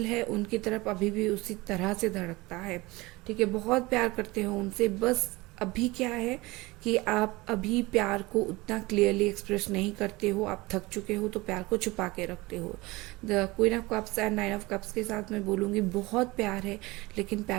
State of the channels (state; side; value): quieter; left; 22.0 dB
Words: है उनकी तरफ अभी भी उसी तरह से धड़कता है। ठीक है, बहुत प्यार करते हो उनसे, बस अभी क्या है कि आप अभी प्यार को उतना क्लियरली एक्सप्रेस नहीं करते हो, आप थक चुके हो तो प्यार को छुपा के रखते हो। The queen of cups and nine of cups के साथ मैं बोलूँगी बहुत प्यार है लेकिन